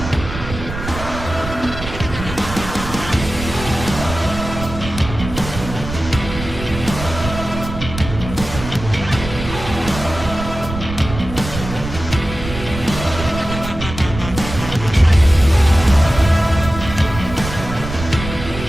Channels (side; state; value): right; noise; rumble, 9 dB below the sound